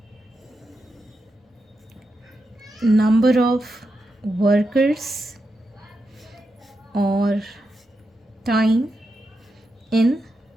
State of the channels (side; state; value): both; normal; correlation 0.87